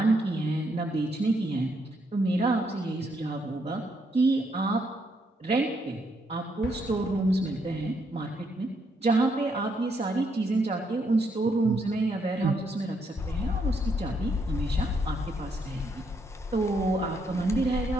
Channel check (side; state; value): both; normal; correlation 0.75